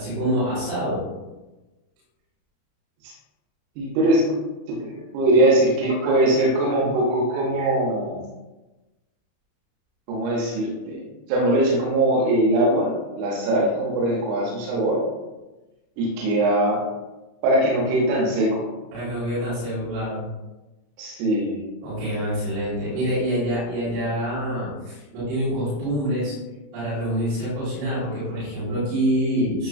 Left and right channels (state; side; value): late; left; 34 ms